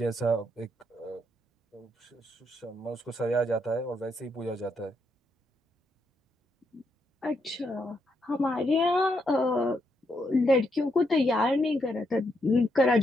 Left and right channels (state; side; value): normal; both; correlation 0.78